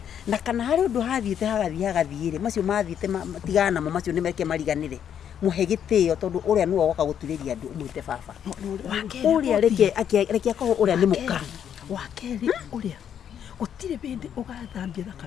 Na kana harĩ ũndũ hathiĩte hagathiĩ-rĩ macio mathiĩte matigana namo macio nĩ meke mariganĩre. Muhe gĩtĩo tondũ ũrĩa nĩwe woka gũturĩria andũ ũmwĩte baba. Ũrĩa reke akorwo ũrĩa nĩ mũka. Wa kerĩ ũrĩa gũtirĩ bĩndĩ ũgathambia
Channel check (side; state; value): right; quieter; 9.0 dB